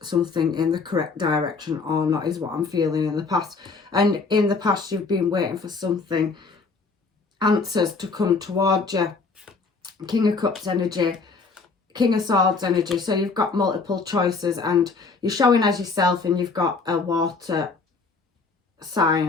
something in the correct direction or not, is what I'm feeling in the past. And in the past, you've been waiting for something, answers to come towards you. King of Cups energy, King of Swords energy. So you've got multiple choices and you're showing as yourself, and you've got a water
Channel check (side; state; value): right; quieter; 4.3 dB